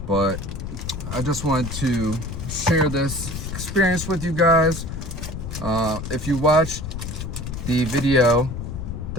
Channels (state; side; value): noise; left; rumble, 7 dB below the sound